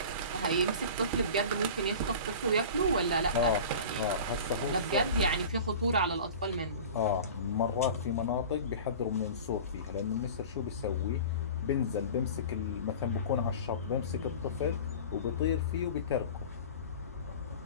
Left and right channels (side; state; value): both; inverted; correlation -0.37